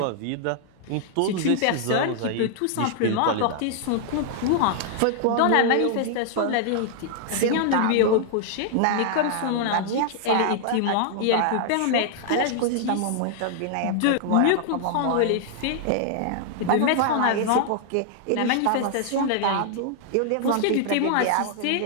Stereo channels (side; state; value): both; different; correlation -0.01